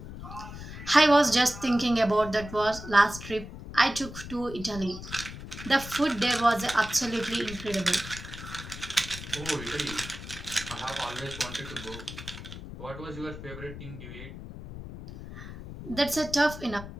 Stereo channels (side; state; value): left; noise; rumble, 12 dB below the sound